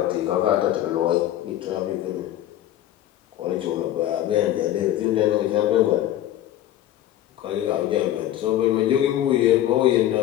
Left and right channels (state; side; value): quieter; right; 12.9 dB